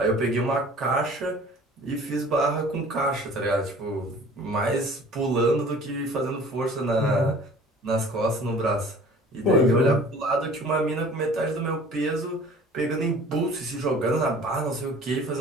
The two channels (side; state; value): both; normal; correlation 0.48